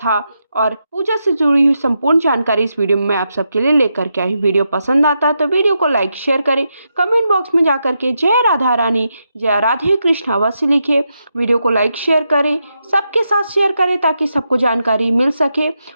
और पूजा से जुड़ी हुई संपूर्ण जानकारी इस वीडियो में मैं आप सबके लिए लेकर के आई। वीडियो पसंद आता है तो वीडियो को लाइक शेयर करें। कमेंट बॉक्स में जाकर के जय राधा रानी, जय राधे कृष्ण अवश्य लिखिए। वीडियो को लाइक शेयर करें, सबके साथ शेयर करें ताकि सबको जानकारी मिल सके।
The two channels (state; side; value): inverted; both; correlation -0.84